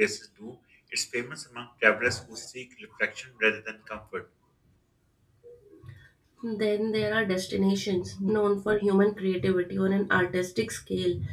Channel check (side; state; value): both; identical; correlation 1.00